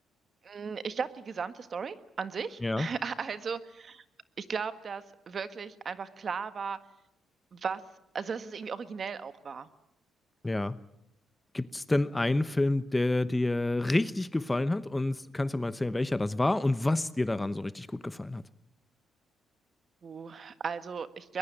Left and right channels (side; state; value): both; normal; correlation 0.95